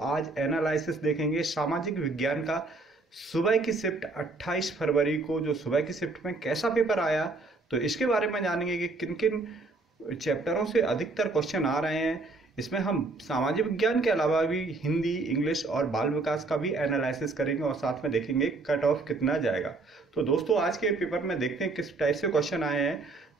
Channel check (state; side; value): quieter; left; 3.5 dB